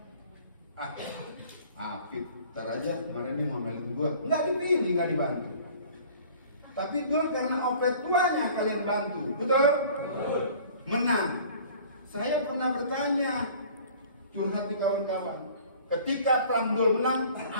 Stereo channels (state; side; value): inverted; both; correlation -0.49